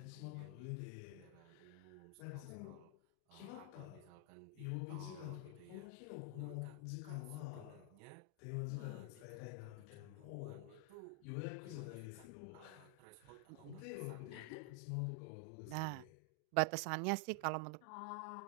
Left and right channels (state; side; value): different; both; correlation 0.00